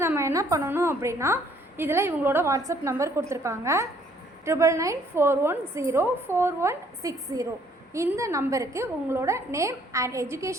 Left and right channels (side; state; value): both; normal; correlation 0.63